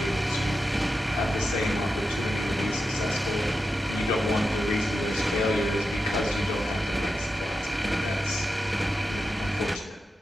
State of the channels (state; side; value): normal; both; correlation 0.89